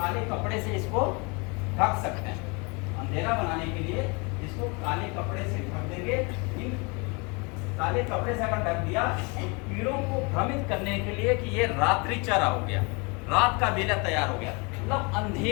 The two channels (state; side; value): quieter; right; 30.4 dB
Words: कपड़े से इसको ढक सकते हैं। अंधेरा बनाने के लिए इसको काले कपड़े से ढक देंगे। इन काले कपड़े से अगर ढक दिया तो कीड़ों को भ्रमित करने के लिए कि ये रात्रि चारा हो गया, रात का बेला तैयार हो गया। मतलब